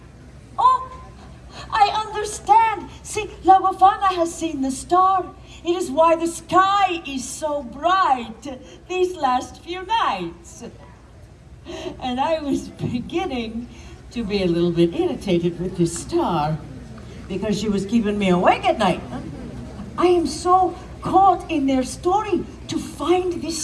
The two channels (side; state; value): both; identical; correlation 1.00